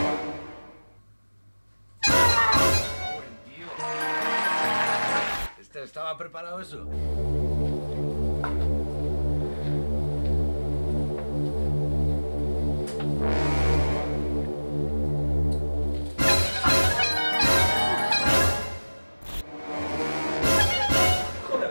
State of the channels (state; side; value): inverted; both; correlation -1.00